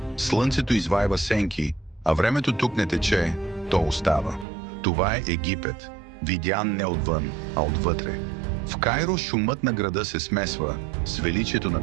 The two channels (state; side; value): drops out; left; at 4.5 s